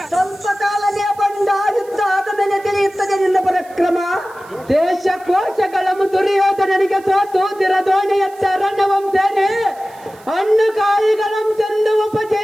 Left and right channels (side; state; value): right; noise; hiss, 27 dB below the sound